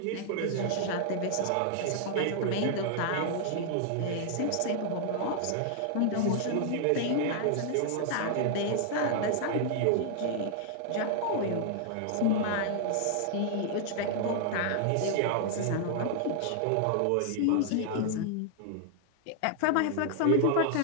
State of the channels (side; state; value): both; different; correlation 0.00